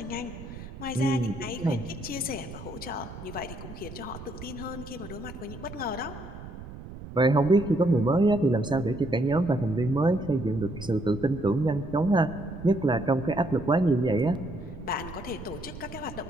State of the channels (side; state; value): right; noise; rumble, 13 dB below the sound